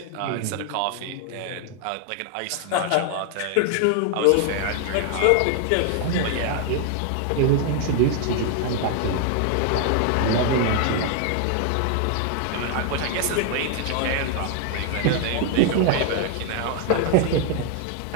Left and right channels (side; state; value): both; different; correlation 0.00